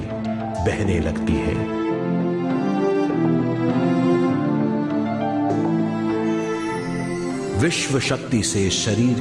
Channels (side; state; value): both; identical; correlation 1.00